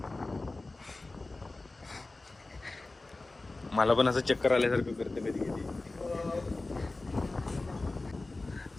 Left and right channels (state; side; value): quieter; right; 3.2 dB